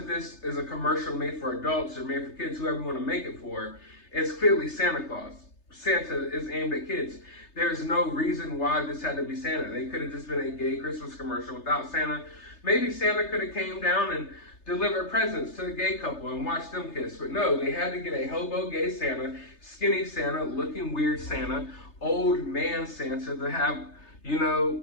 this is a commercial made for adults or made for kids, whoever you want to make it for, it's clearly Santa Claus. Santa is aimed at kids. There's no reason why this had to be Santa. They could have just been a gay Christmas commercial without Santa. Maybe Santa could have came down and delivered presents to the gay couple and watched them kiss. But no, they had to get a hobo gay Santa, skinny Santa, looking weird Santa, old man Santa to have, you know,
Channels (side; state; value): right; late; 3.3 ms